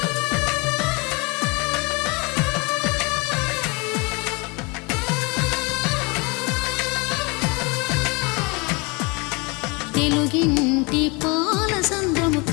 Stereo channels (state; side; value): quieter; right; 28.7 dB